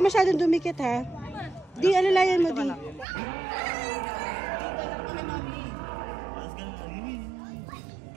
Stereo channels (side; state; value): left; drops out; at 3.1 s